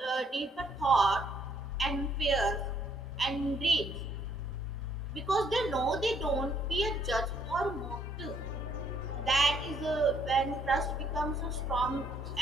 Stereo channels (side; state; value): both; normal; correlation 0.67